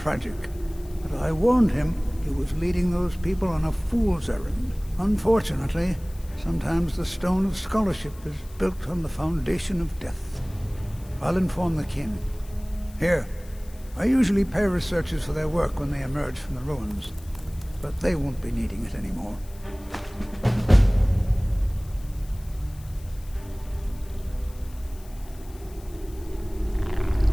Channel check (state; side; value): noise; left; hiss, 23 dB below the sound